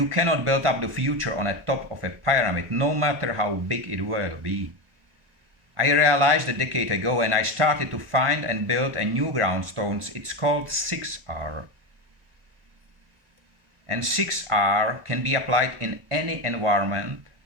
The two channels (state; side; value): late; left; 1.4 ms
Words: cannot build up the future on the top of a pyramid, no matter how big it will be. I realized a decade ago, and I started to find and build a new groundstones. It's called 6R. And 6R can be applied in any environment,